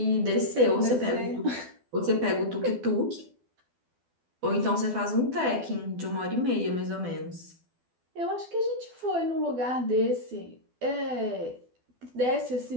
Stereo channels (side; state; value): left; late; 12 ms